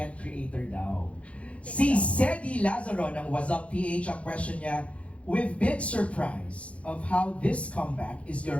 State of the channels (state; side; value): late; right; 0.063 ms